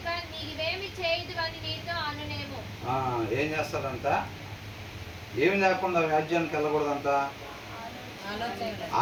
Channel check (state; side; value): identical; both; correlation 1.00